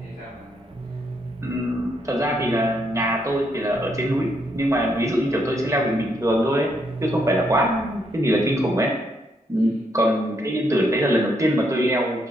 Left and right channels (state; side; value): normal; both; correlation 0.75